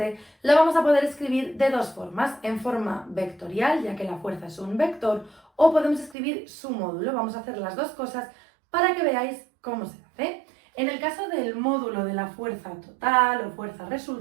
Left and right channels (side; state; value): left; drops out; at 6.2 s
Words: la vamos a poder escribir de dos formas, en forma vectorial, ya que la fuerza es un vector, o podemos escribir su módulo. Vamos a hacer las dos cosas para que veáis cómo se hace. En el caso del módulo de la fuerza total o fuerza